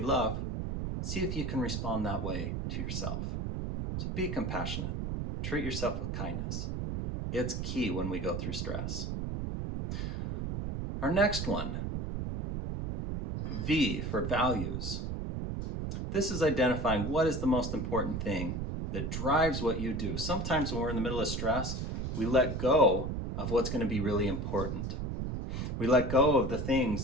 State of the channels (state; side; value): noise; right; rumble, 3 dB below the sound